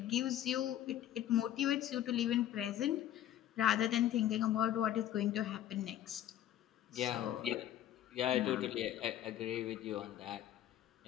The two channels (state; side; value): quieter; right; 12.0 dB